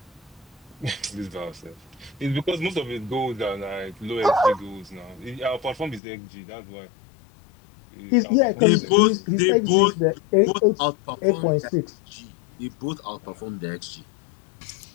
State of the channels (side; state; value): right; drops out; at 6.0 s